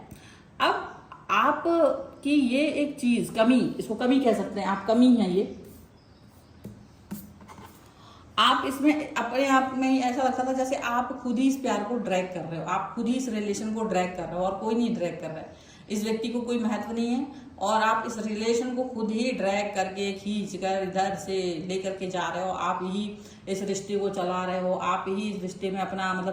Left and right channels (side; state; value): both; identical; correlation 1.00